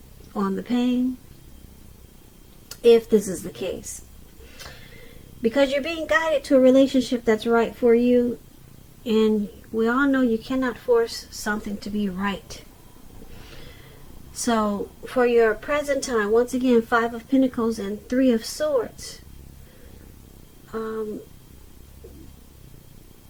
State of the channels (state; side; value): identical; both; correlation 1.00